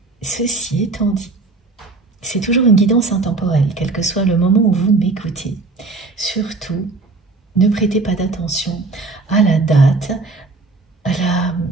Ceci étant dit, c'est toujours une guidance intemporelle, quel que soit le moment où vous m'écoutez. Surtout, ne prêtez pas d'attention à la date, à la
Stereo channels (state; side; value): quieter; left; 3.7 dB